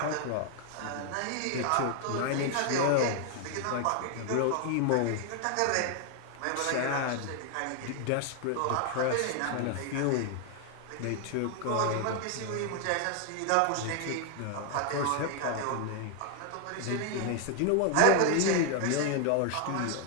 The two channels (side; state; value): both; different; correlation 0.00